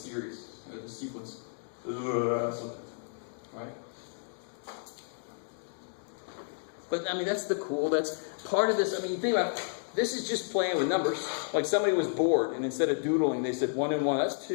or the sequence. Something. Right? But, I mean, that's the cool, that's part of this. I mean, you think about it, this is just playing with numbers. Like somebody was bored, and instead of doodling, they said 1 and 1, that's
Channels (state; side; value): silent; right; digital silence